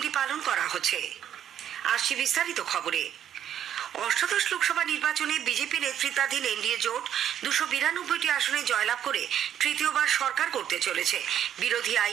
পালন করা হচ্ছে। আসছি বিস্তারিত খবরে। অষ্টাদশ লোকসভা নির্বাচনে বিজেপি নেতৃত্বাধীন এনডিএ জোট 292টি আসনে জয়লাভ করে তৃতীয়বার সরকার করতে চলেছে। বিরোধী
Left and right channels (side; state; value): left; quieter; 10.0 dB